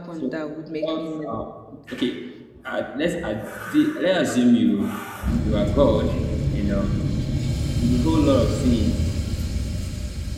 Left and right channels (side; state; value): both; identical; correlation 1.00